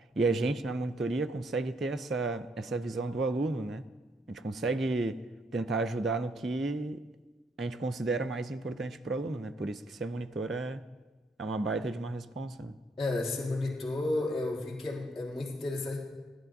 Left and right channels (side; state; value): both; normal; correlation 0.72